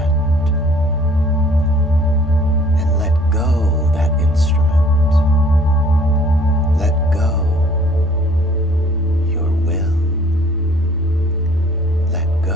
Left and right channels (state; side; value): normal; both; correlation 0.56